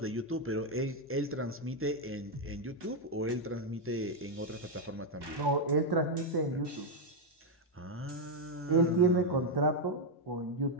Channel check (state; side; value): normal; both; correlation 0.01